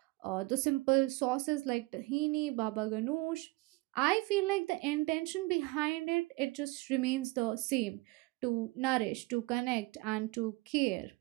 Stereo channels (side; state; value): left; quieter; 22.9 dB